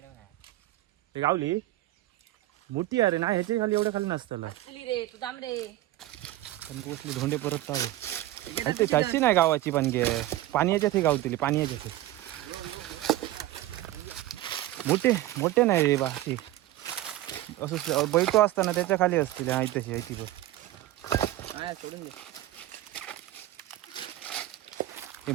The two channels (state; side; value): quieter; left; 15.3 dB